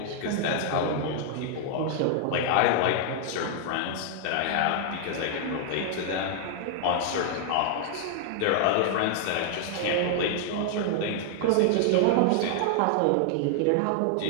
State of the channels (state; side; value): different; both; correlation 0.00